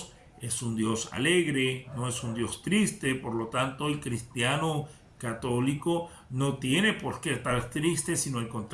es un Dios alegre, no es un Dios triste. Por lo tanto, el cristiano católico no tiene por qué estar triste, sino al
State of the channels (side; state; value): both; identical; correlation 1.00